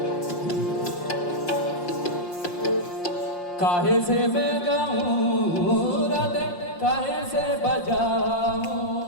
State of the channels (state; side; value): late; right; 5.7 ms